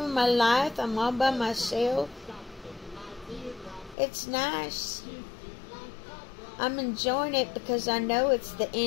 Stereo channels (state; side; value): drops out; right; at 4.0 s